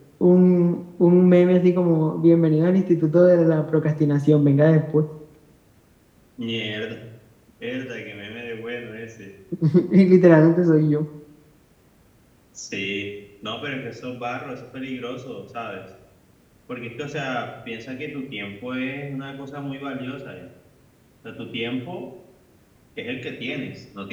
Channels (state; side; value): identical; both; correlation 1.00